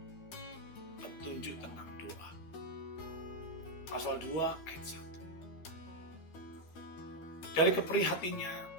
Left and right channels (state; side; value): late; right; 13 ms